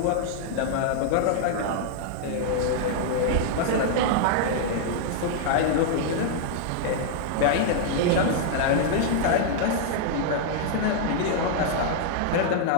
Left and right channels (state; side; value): different; both; correlation -0.01